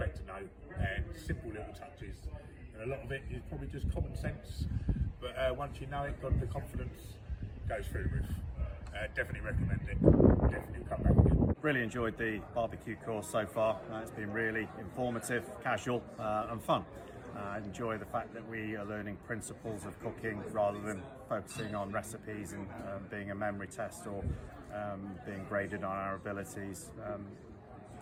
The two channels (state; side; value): identical; both; correlation 1.00